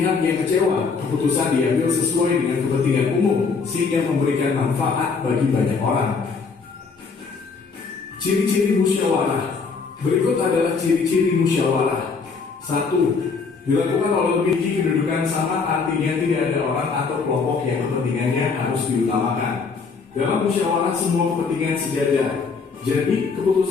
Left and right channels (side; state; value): right; quieter; 4.9 dB